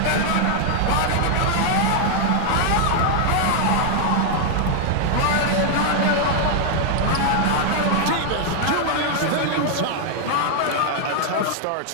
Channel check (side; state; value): both; different; correlation 0.00